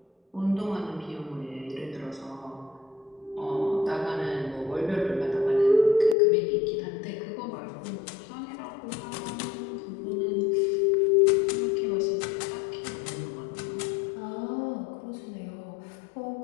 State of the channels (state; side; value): drops out; right; at 6.2 s